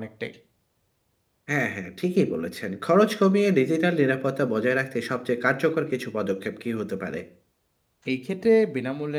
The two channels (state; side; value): identical; both; correlation 1.00